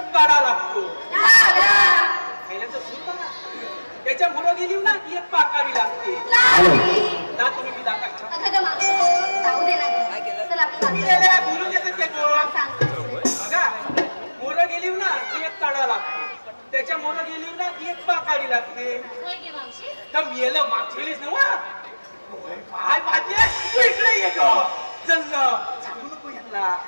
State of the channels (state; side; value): inverted; both; correlation -1.00